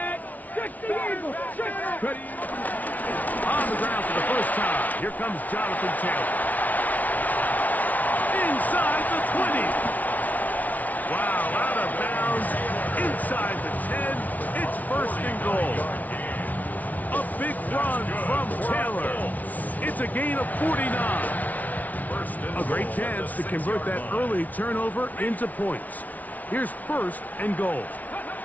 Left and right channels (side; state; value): right; late; 0.075 ms